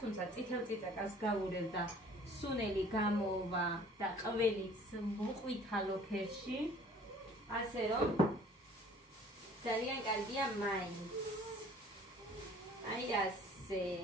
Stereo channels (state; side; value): normal; both; correlation 0.53